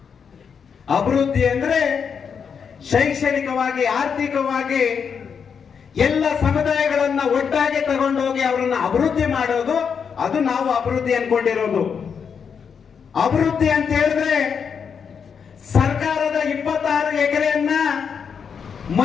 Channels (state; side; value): quieter; right; 6.7 dB